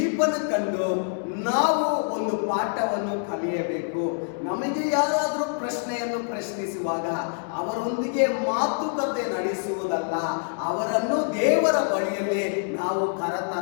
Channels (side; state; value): right; silent; digital silence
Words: ಕಂಡು ನಾವು ಒಂದು ಪಾಠವನ್ನು ಕಲಿಯಬೇಕು. ನಮಗೆ ಯಾರಾದರೂ ಪ್ರಶ್ನೆಯನ್ನು ಪ್ರಶ್ನಿಸುವಾಗ ಅವರೊಂದಿಗೆ ಮಾತುಕತೆ ನಡೆಸುವುದಲ್ಲ, ಅವರನ್ನು ದೇವರ ಬಳಿಯಲ್ಲಿ ನಾವು